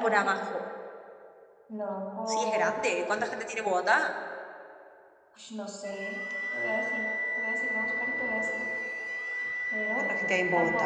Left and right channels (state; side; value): identical; both; correlation 1.00